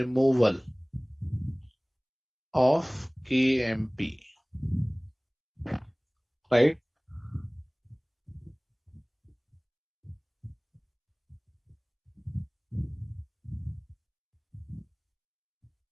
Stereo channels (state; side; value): identical; both; correlation 1.00